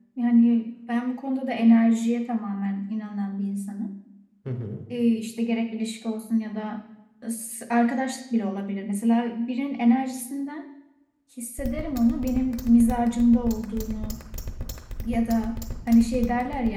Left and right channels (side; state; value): both; identical; correlation 1.00